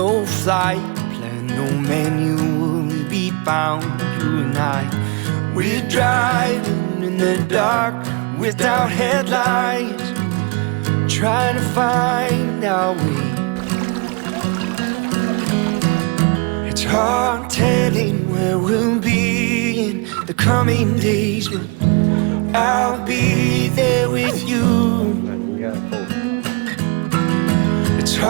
flight plan, no manual to be bound. You and I, we're driving in the dark without headlights, trying to find our way. It's hard telling where we'll be in the coming days, but I'll be there with you. It's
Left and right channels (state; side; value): quieter; left; 31.4 dB